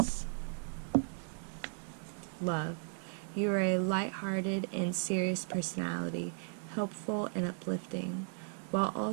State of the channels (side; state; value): left; silent; 54 dB below the other